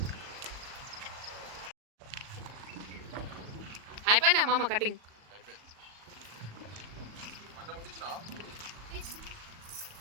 అయిపోయినా మామ కటింగ్.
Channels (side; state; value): left; late; 38 ms